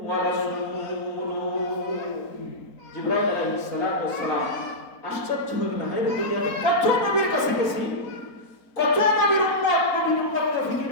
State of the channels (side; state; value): right; late; 4.3 ms